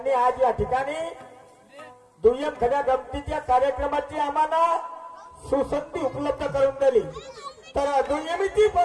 आज या ठिकाणी दुय्यम खड्या गमतीच्या कार्यक्रमाची आम्हाला सुसंधी उपलब्ध करून दिली। तर दुय्यमीची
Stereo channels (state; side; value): identical; both; correlation 1.00